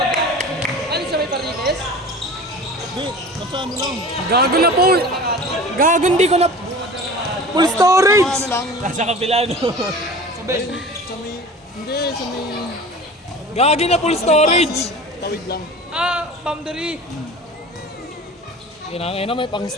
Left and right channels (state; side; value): normal; both; correlation 0.38